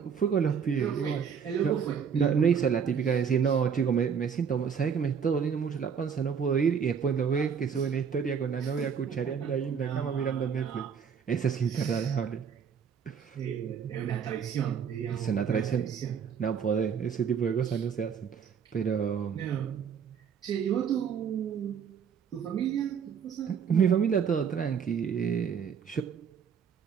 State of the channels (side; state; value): left; quieter; 7.0 dB